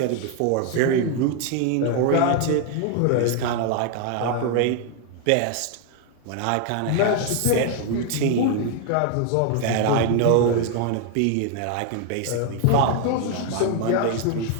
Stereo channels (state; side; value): different; both; correlation 0.00